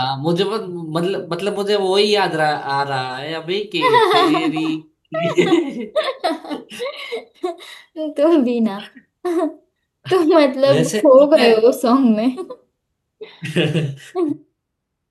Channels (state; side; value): identical; both; correlation 1.00